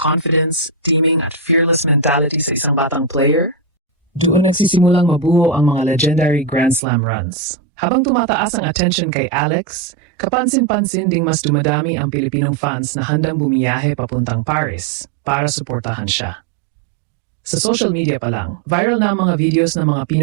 teaming at fearless mentality sa isang batang player, doon nagsisimulang mabuo ang mga legendary Grand Slam runs. Habang tumataas ang attention kay Alex, kapansin-pansin ding mas dumadami ang Pilipinong fans na handang bumiyahe papuntang Paris para suportahan siya. Sa social media pa lang, viral na ang mga videos ng mga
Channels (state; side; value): drops out; left; at 6.8 s